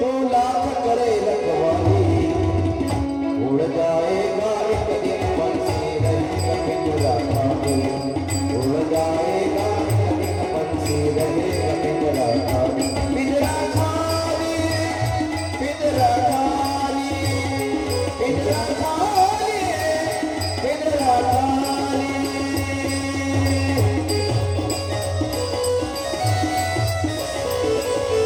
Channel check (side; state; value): both; identical; correlation 1.00